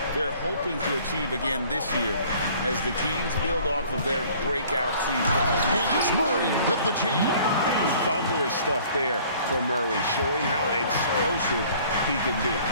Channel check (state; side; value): inverted; both; correlation -0.53